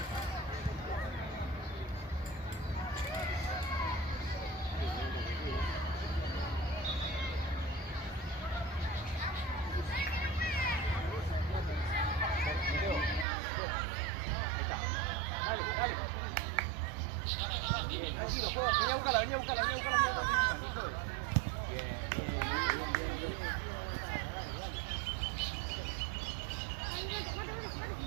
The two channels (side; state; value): left; drops out; at 13.2 s